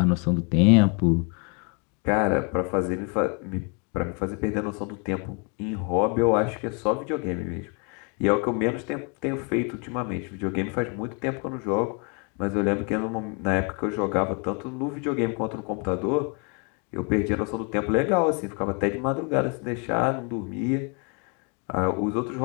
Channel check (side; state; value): right; quieter; 35.5 dB